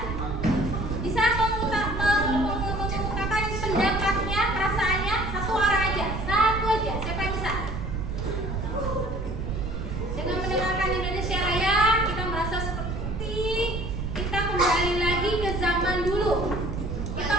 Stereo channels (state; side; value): noise; right; rumble, 4 dB below the sound